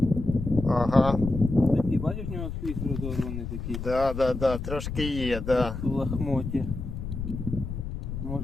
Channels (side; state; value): left; noise; rumble, 6 dB below the sound